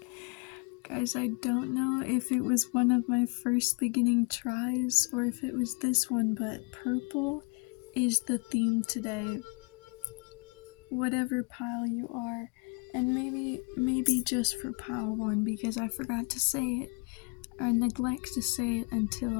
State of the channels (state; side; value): quieter; right; 32.2 dB